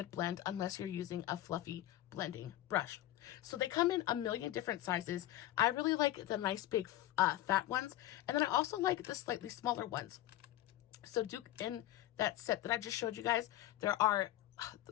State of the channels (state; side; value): quieter; right; 14.6 dB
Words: blend unless you're using a fluffy blending brush. So they come in a million different sizes. I really like the nice big fat ones, and then I also like the slightly smaller ones. So in that set that I just showed you guys,